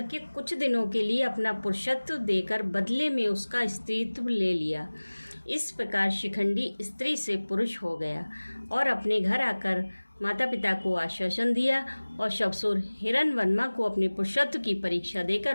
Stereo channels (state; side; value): inverted; both; correlation -1.00